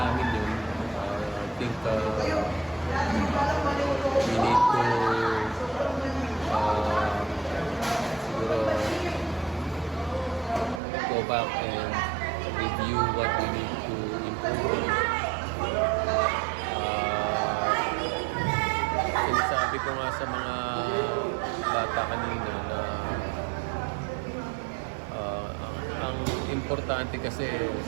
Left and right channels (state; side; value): drops out; left; at 10.8 s